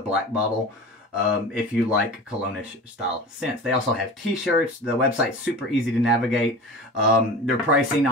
bottle if you like cologne-ish style scents. They also have t-shirts. The website's super easy to navigate. Their pricing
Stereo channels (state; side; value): normal; both; correlation 0.35